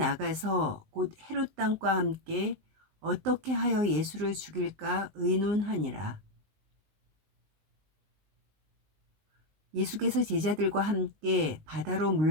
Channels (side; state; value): left; late; 19 ms